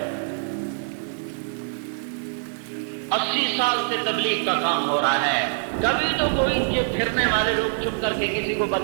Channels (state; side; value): silent; left; 62 dB below the other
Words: 80 سال سے تبلیغ کا کام ہو رہا ہے، کبھی تو کوئی یہ پھرنے والے لوگ چھپ کر کے کسی کو